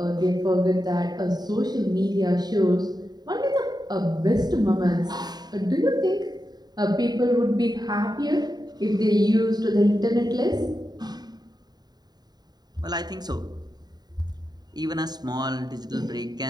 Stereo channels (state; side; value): late; left; 0.20 ms